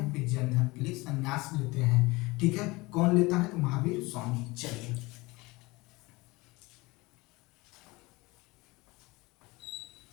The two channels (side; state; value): right; quieter; 22.7 dB